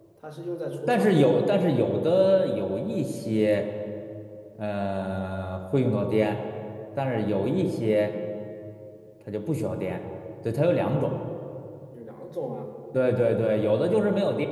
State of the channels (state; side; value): identical; both; correlation 1.00